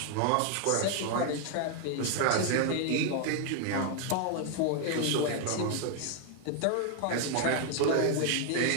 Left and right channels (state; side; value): different; both; correlation 0.00